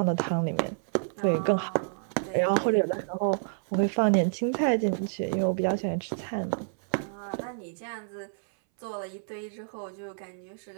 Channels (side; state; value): left; silent; 59 dB below the other